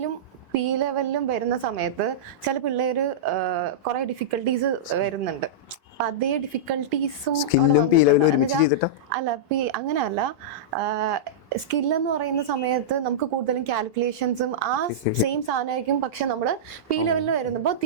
P ലെവലിലും വരുന്ന സമയത്ത് ചില പിള്ളേര് കുറെ ഡിഫിക്കൽട്ടീസ് വരുന്നുണ്ട്. അതേ ഡിഫിക്കൽട്ടീസും അവിടെ വന്നിട്ടുണ്ട്. അല്ല അങ്ങനെയല്ല, സ്കില്ലെന്ന് പറയുന്ന സമയത്ത് നമുക്ക് കൂടുതലും കാൽക്കുലേഷൻസും ആ സെയിം സാധനമായിരിക്കും. പക്ഷെ നമ്മള് P ലെവലിൽ വരുമ്പോ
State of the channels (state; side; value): normal; both; correlation -0.13